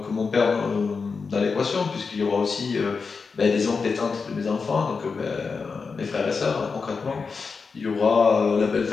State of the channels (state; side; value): quieter; right; 4.9 dB